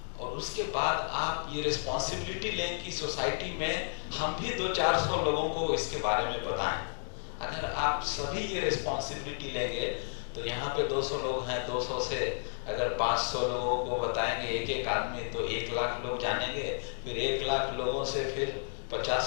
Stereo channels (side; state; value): right; silent; digital silence